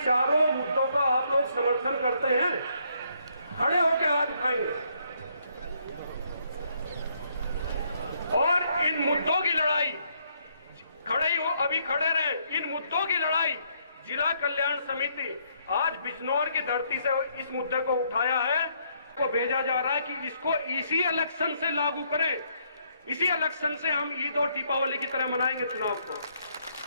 मुद्दों का आप लोग समर्थन करते हैं? खड़े होकर हाथ उठाएंगे। और इन मुद्दों की लड़ाई, खड़े ही हो, अभी खड़े रहे। इन मुद्दों की लड़ाई जिला कल्याण समिति आज बिजनौर की धरती से इस मुद्दे को उठाया है, को भेजा जा रहा है कि इसको इसी इलेक्शन से लागू करें, इसी इलेक्शन से हम ईद और दीपावली की तरह मनाएंगे चुनाव को।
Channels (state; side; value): inverted; both; correlation -0.71